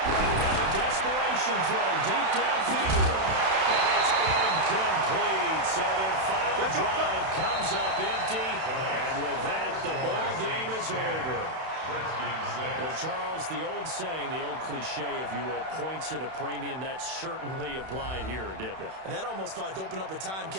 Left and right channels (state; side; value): late; left; 31 ms